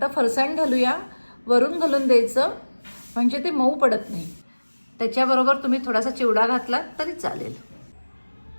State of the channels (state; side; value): inverted; both; correlation -1.00